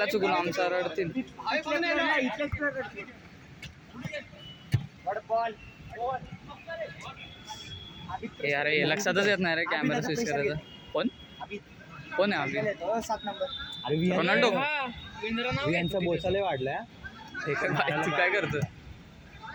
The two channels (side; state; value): both; identical; correlation 1.00